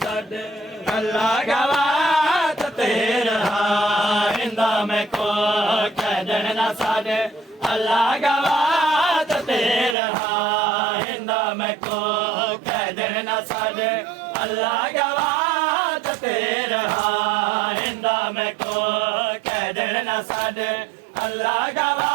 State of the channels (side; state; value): left; drops out; at 10.0 s